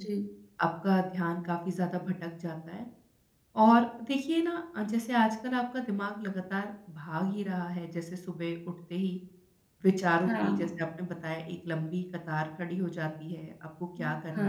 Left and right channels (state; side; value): identical; both; correlation 1.00